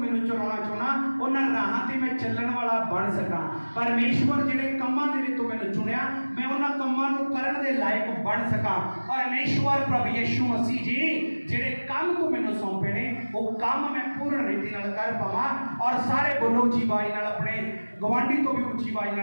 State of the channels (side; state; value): both; inverted; correlation -1.00